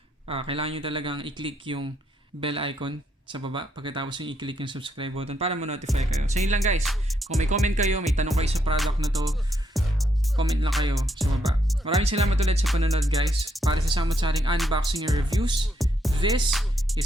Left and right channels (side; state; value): both; normal; correlation 0.76